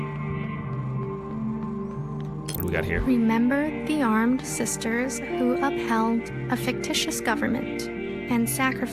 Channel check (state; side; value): identical; both; correlation 1.00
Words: we got here? Remember the armed sisters who upheld a fictitious government and